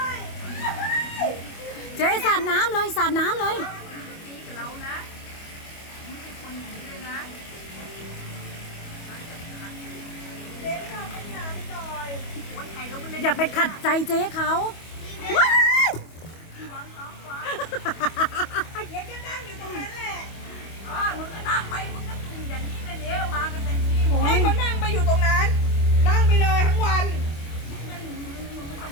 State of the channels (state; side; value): late; right; 25 ms